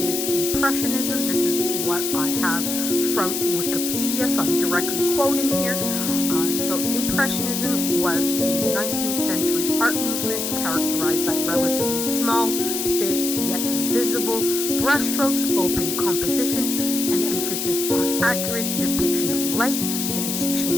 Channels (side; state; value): left; noise; hiss, 2 dB below the sound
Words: Impressionism. This is what I have from Wikipedia, so I'm directly quoting here. So Impressionism was a 19th century art movement characterized by relatively small, thin, yet visible brushstrokes, open composition, and emphasis on accurate depiction of light in its